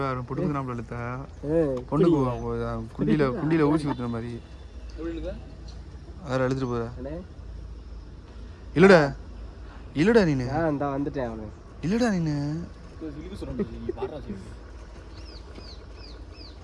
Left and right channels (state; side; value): identical; both; correlation 1.00